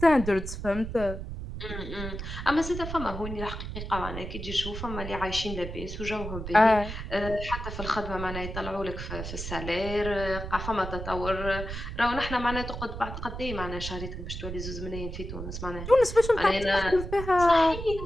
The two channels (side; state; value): right; noise; rumble, 7 dB below the sound